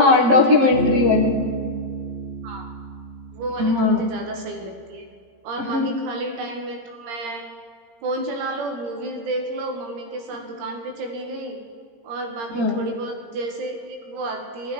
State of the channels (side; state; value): left; late; 17 ms